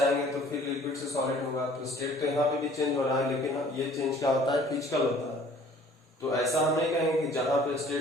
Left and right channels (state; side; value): normal; both; correlation 0.53